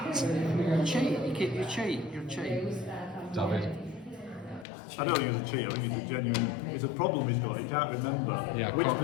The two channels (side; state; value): right; drops out; at 4.7 s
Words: Cheat, you cheat, you're cheat. David. I don't think it's a cheat, I think it's a genuine, it's a problem he's got, he can't remember which